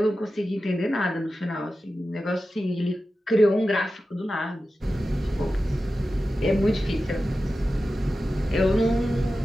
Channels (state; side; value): normal; both; correlation 0.93